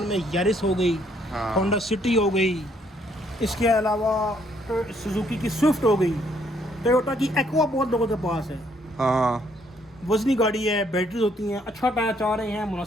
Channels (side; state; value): both; normal; correlation 0.68